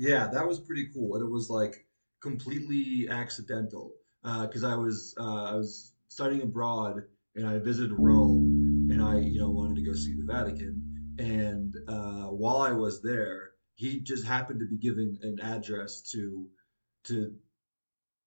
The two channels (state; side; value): inverted; both; correlation -1.00